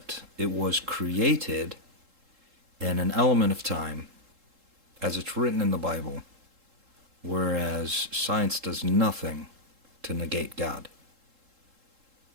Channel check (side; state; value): left; late; 3.7 ms